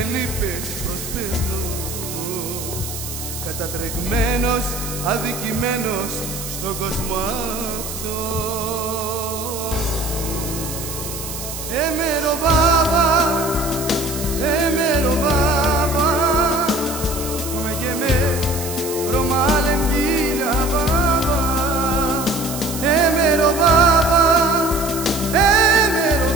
λύπες προσπερνώ, κατατρεγμένος, αδικημένος στον κόσμο αυτό. Έμερο βάβα, έμερο βάβα, come che me romalen gila baba. Έμερο βάβα, έμερο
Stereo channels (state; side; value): noise; right; hiss, 8 dB below the sound